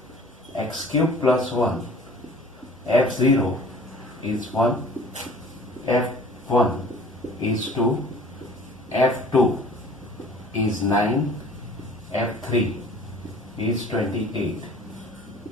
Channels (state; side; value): normal; both; correlation 0.49